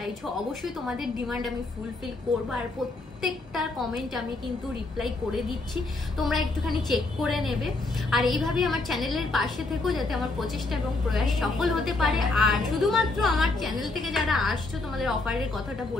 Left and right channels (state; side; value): quieter; right; 3.3 dB